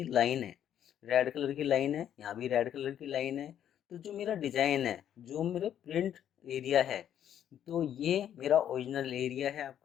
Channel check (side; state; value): right; quieter; 10.1 dB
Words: लाइन है, रेड कलर की लाइन है, यहाँ भी रेड कलर की लाइन है। तो जो मेरा डिजाइन है, जो मेरा प्रिंट एरिया है, तो ये मेरा ओरिजिनल एरिया है